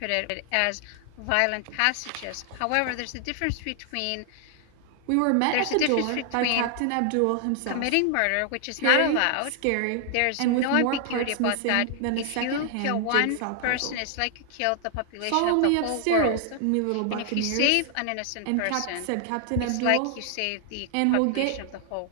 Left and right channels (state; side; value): different; both; correlation 0.00